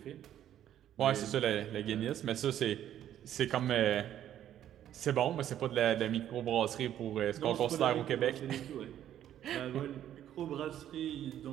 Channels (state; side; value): quieter; left; 11.2 dB